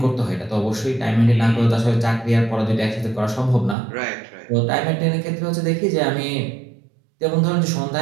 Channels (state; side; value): drops out; left; at 3.8 s